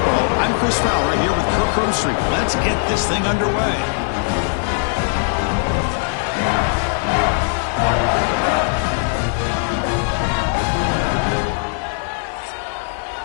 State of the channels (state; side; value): silent; right; 63 dB below the other